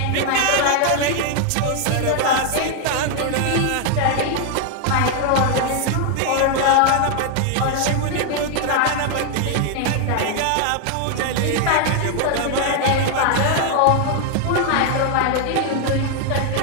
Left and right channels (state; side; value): different; both; correlation 0.00